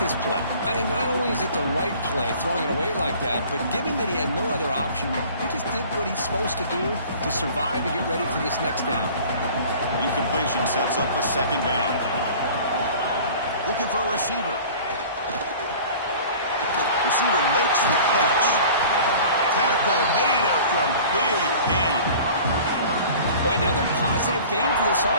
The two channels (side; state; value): both; inverted; correlation -0.44